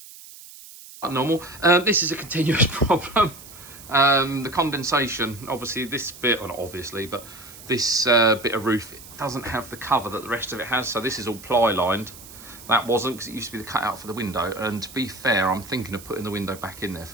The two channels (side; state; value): right; noise; hiss, 17 dB below the sound